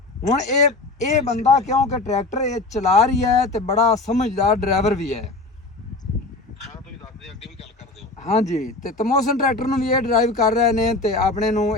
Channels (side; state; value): right; quieter; 3.2 dB